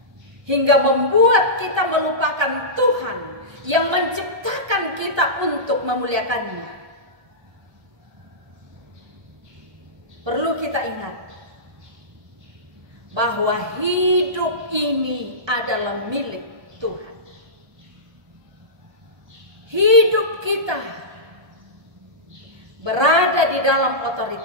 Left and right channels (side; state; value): left; late; 1.3 ms